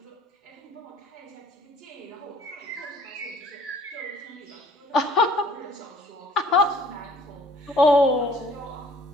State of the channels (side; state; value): both; normal; correlation 0.55